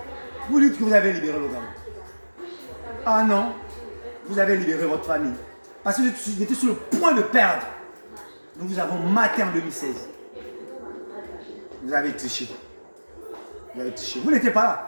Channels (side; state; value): both; inverted; correlation -1.00